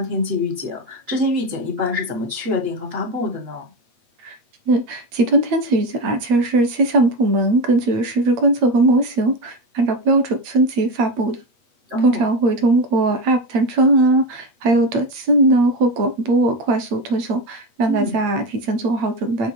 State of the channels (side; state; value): left; late; 8.4 ms